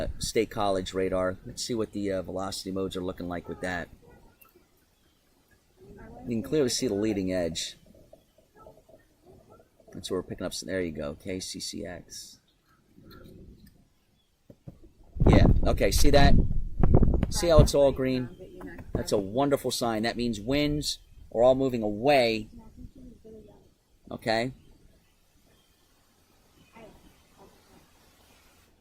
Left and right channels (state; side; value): identical; both; correlation 1.00